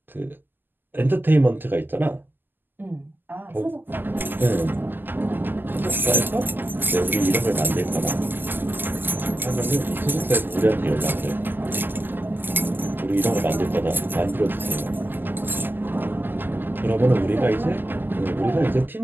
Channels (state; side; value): late; left; 0.091 ms